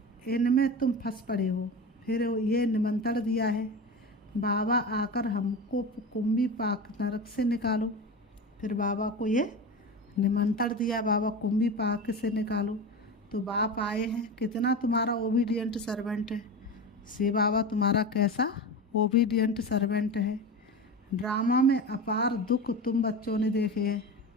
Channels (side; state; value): both; normal; correlation 0.26